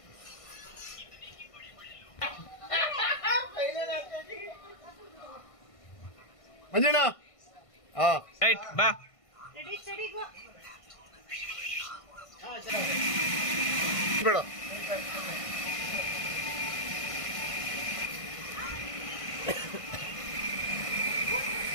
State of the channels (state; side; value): late; right; 1.5 ms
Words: ಮಂಜಣ್ಣ ರೈಟ್ ಬಾ. ಬೇಡ